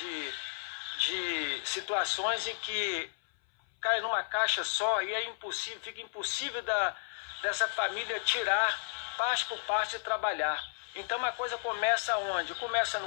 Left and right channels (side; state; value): right; silent; 56 dB below the other